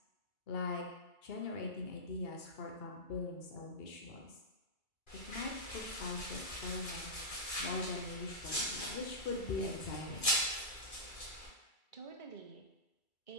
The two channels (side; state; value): right; late; 2.3 ms